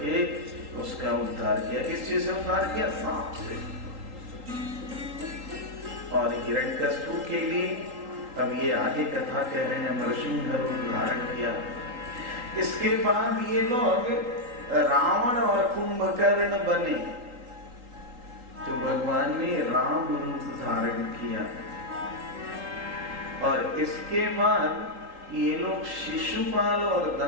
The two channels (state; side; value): late; left; 3.8 ms